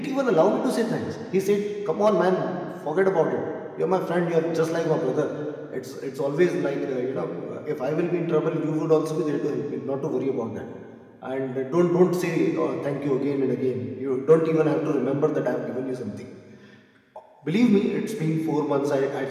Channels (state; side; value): identical; both; correlation 1.00